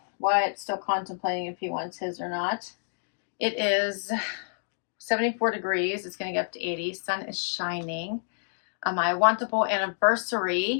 Wyatt's still contemplating if he wants his or not. It is 74 degrees. It's going to get up to 80. Sun is shining. My Wantable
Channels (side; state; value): right; silent; digital silence